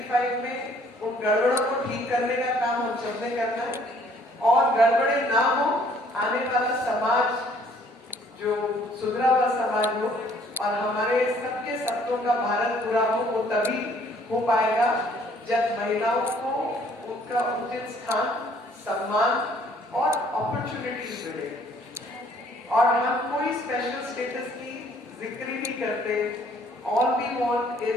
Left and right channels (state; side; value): normal; both; correlation 0.60